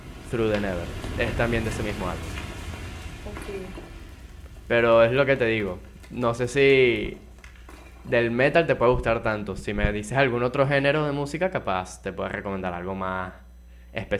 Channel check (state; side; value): identical; both; correlation 1.00